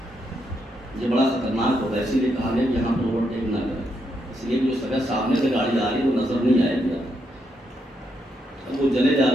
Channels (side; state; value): both; normal; correlation 0.79